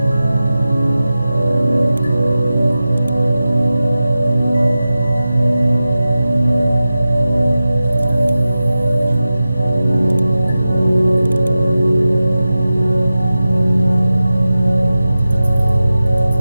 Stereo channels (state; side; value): inverted; both; correlation -0.95